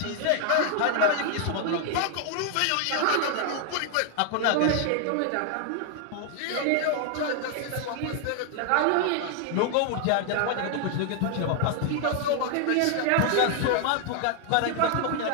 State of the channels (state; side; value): different; both; correlation 0.00